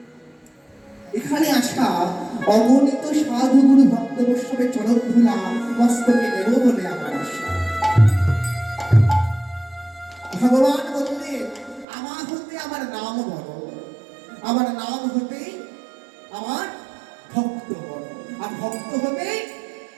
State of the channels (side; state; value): left; drops out; at 11.9 s